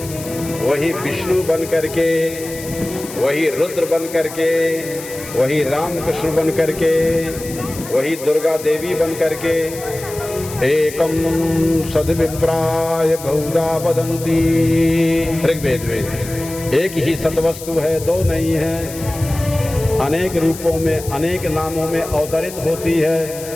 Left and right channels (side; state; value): left; noise; hiss, 13 dB below the sound